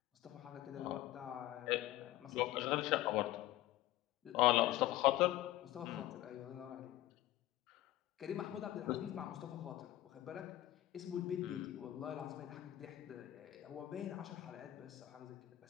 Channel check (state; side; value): quieter; right; 15.2 dB